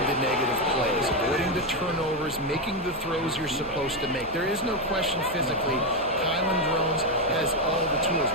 the negative plays, avoiding the turnovers, making the throws you're supposed to make. There is no question physically, Kylan Drones has all the tools.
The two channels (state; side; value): noise; right; hum, 20 dB below the sound